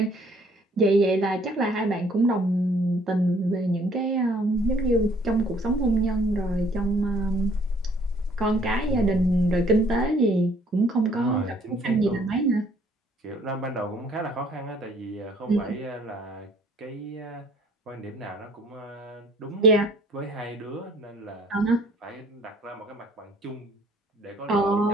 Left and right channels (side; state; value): both; normal; correlation 0.59